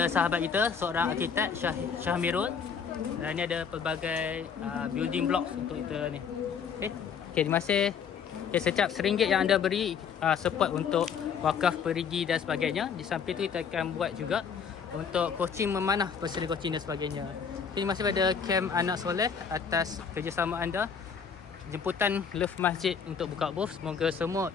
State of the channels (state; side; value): quieter; right; 6.7 dB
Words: sahabat kita, seorang arkitek, Syahmirul. Dan ini ada pelbagai building blocks untuk kita ni. Okay, terima kasih. Okay, setiap RM1 yang anda beri support untuk wakaf perigi dan sebagainya. Di samping itu kita akan buat juga untuk coaching memanah, personal coaching dan sebagainya. Terima kasih kepada Kem Anak Soleh atas kerjasama anda. Jemputan Love Masjid untuk buka booth. Semoga